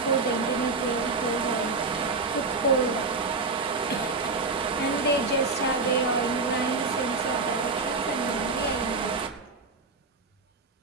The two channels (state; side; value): quieter; left; 3.9 dB